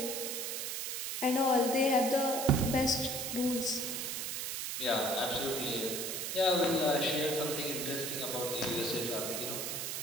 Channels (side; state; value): right; noise; hiss, 3 dB below the sound